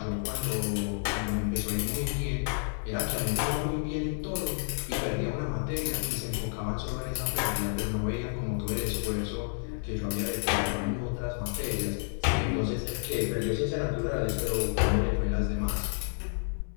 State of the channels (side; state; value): right; silent; digital silence